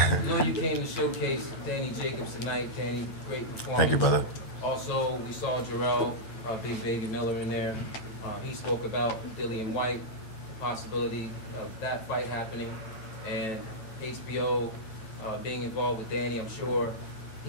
you came to showcase Danny Jacobs tonight. Danny, great performance. Thank you, brother. Also, we saw Jarrell, Big Baby Miller in there. He spoke about Dillian White, the possibility of that fight happening. And HBO being involved with Danny, I'm sure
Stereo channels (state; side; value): late; right; 8.8 ms